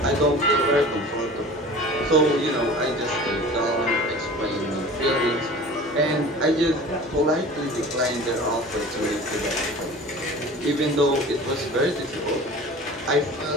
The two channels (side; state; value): both; normal; correlation 0.40